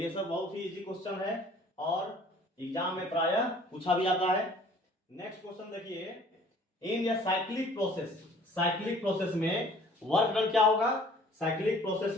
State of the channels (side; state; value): both; normal; correlation 0.53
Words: सब बहुत ही इजी क्वेश्चन है और एग्जाम में प्रायः पूछा भी आता है। नेक्स्ट क्वेश्चन देखिए, इन या साइक्लिक प्रोसेस, साइक्लिक प्रोसेस में वर्क डन क्या होगा, साइक्लिक प्रोसेस